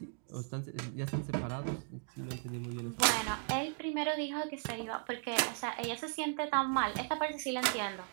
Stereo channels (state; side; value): silent; left; 53 dB below the other